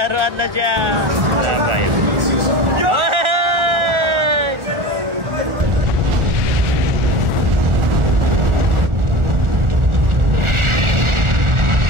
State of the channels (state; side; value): late; left; 1.4 ms